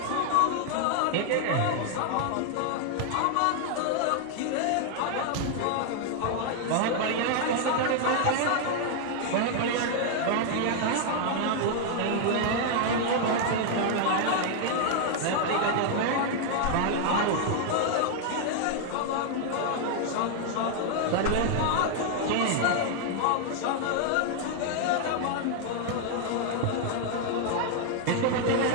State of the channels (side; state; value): both; different; correlation 0.00